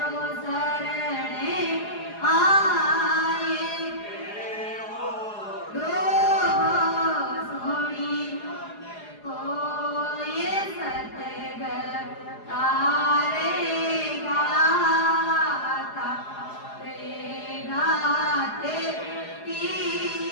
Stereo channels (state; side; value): late; right; 4.8 ms